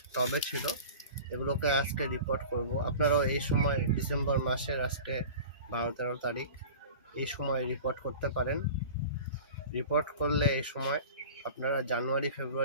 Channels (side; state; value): both; inverted; correlation -0.37